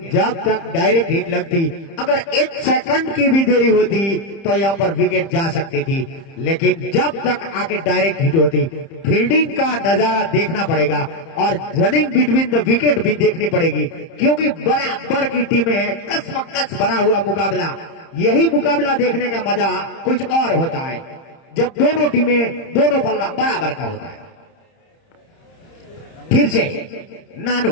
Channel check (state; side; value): late; right; 30 ms